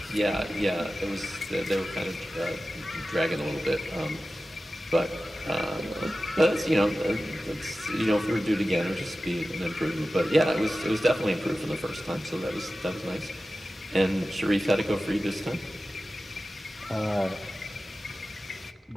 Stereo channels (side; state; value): both; normal; correlation 0.95